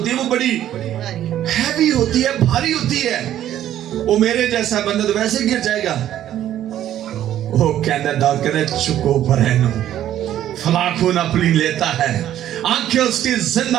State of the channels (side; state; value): left; quieter; 11.8 dB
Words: है, वो बड़ी हैवी होती है, भारी होती है। वो मेरे जैसा बंदा तो वैसे गिर जाएगा। वो कहना दाऊद कहना चुको बरहनो, फलाखून अपनी लेता है। आंखें उसकी